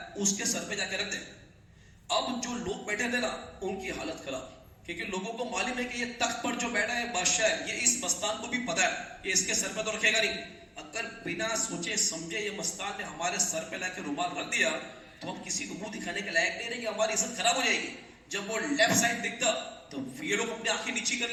اس کے سر پہ جا کے رکھ دے. اب جو لوگ بیٹھے تھے نا ان کی حالت خراب, کیونکہ لوگوں کو معلوم ہے کہ یہ تخت پر جو بیٹھا ہے بادشاہ ہے, یہ اس مستان کو بھی پتا ہے کہ اس کے سر پہ تو رکھے گا نہیں. اگر بنا سوچے سمجھے یہ مستان نے ہمارے سر پہ لا کے رومال رکھ دیا تو ہم کسی کو منہ دکھانے کے لائق نہیں رہیں گے, ہماری عزت خراب ہو جائے گی. جب وہ لیفٹ سائڈ دکھتا تو یہ لوگ اپنی آنکھیں نیچی کر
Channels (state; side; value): identical; both; correlation 1.00